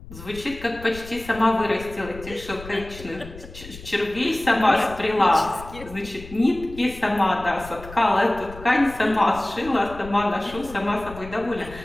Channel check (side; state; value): left; noise; rumble, 16 dB below the sound